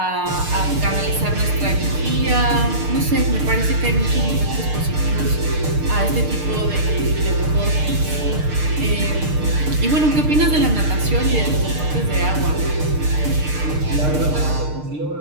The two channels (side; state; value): left; late; 6.6 ms